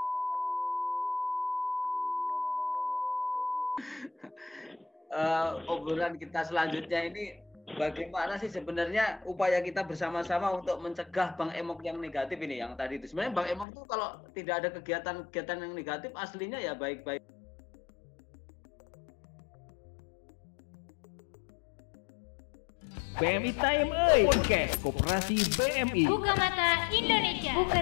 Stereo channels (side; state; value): right; drops out; at 13.7 s